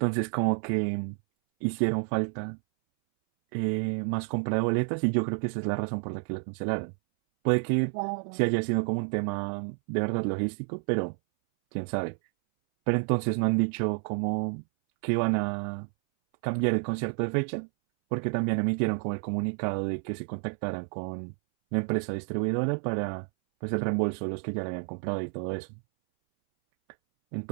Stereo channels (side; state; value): left; silent; 58 dB below the other